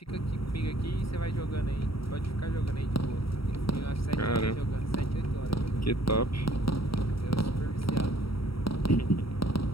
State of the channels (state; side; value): late; right; 0.75 ms